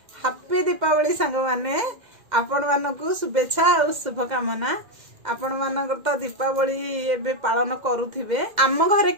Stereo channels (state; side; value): late; left; 2.1 ms